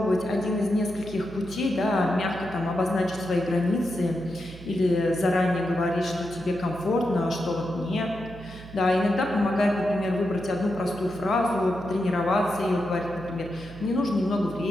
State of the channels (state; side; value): noise; right; hum, 16 dB below the sound